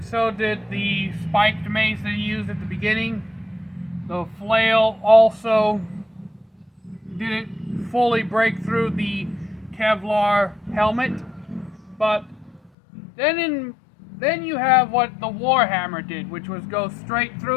so did the spiked mace that he used at the beginning. The flail also didn't fully break through the Kevlar helmet, but then you have what the Warhammer did, which was go straight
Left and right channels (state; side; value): drops out; right; at 12.7 s